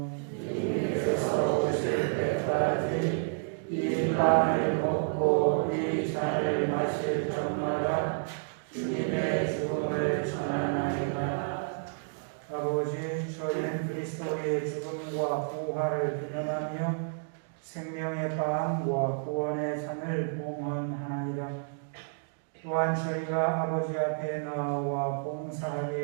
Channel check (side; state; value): left; silent; digital silence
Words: 주님께서 오실 때까지 이 빵을 먹고 이 잔을 마실 적마다 주님의 죽음을 전하나이다. 아버지, 저희는 그리스도의 죽음과 부활을 기념하며 생명의 빵과 구원의 잔을 봉헌하나이다. 또한 저희가 아버지 앞에 나와